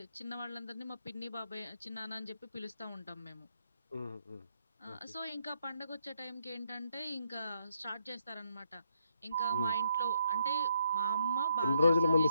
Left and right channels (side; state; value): both; inverted; correlation -0.75